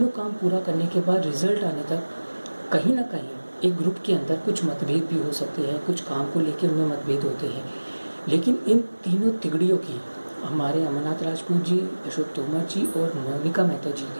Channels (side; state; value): both; inverted; correlation -1.00